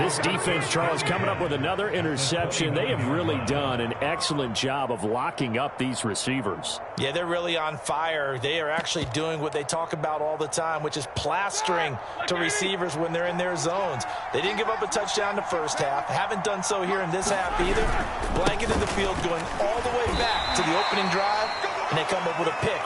defense, Charles, coming up with another interception. They have really done an excellent job of locking up these receivers. Yeah, they're really on fire. They are actually doing what they talk about all the time, which is plastering to receivers when they're in their zones. They didn't give up a touchdown the first half. Haven't done so here in this half either. Blanketed the field going all the way back to the opening drive, and they come up with a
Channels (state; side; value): identical; both; correlation 1.00